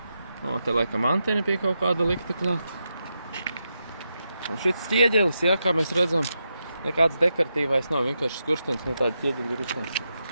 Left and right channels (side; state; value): both; inverted; correlation -0.86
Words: O, te laikam antena pie kaut kāda likta klāt. Un šits ķieģelis, jā, kā mēs redzam, nekāds dekoratīvais nav, vienkārši skurstenis no tāda ķieģeļa ir uztaisīts.